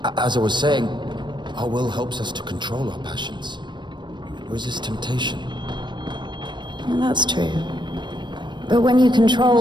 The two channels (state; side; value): late; left; 0.22 ms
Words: As I was saying, our will helps us to control our passions. Resist temptation. Well, that's true. But when you